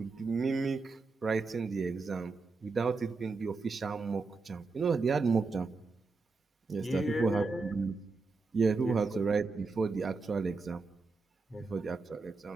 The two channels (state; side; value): quieter; left; 4.1 dB